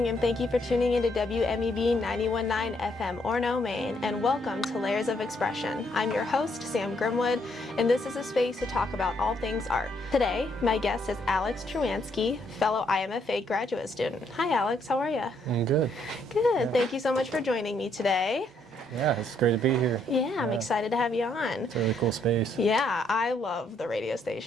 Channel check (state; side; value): normal; both; correlation 0.72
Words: and thank you for tuning into WMEB 91.9 FM Orono, Maine, and welcome to Layers of Expression. I'm your host, Sam Grimwood, and this is a space to talk about all things art. Today, my guest is Alex Truanski, fellow IMFA graduate student. Hi, Alex. How are you? I'm good. Good. Yeah. Thank you so much for joining me today. Yeah, it's great to be here. Yeah, I'm excited to have you on. It's a really cool space. Yeah, I love the radio